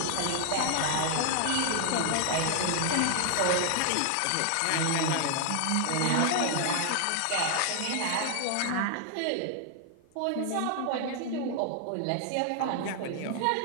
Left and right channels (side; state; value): both; different; correlation 0.00